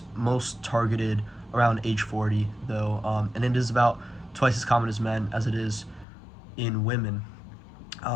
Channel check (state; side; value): drops out; right; at 6.1 s